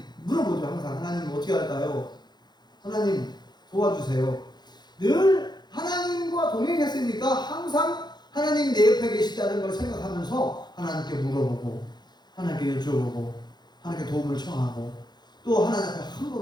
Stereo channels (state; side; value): late; right; 0.21 ms